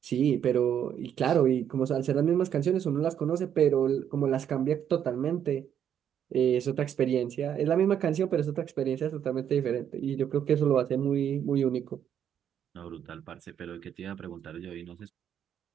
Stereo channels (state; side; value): quieter; left; 9.2 dB